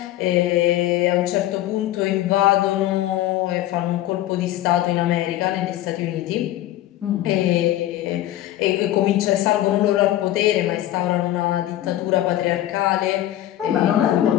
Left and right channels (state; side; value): quieter; right; 14.0 dB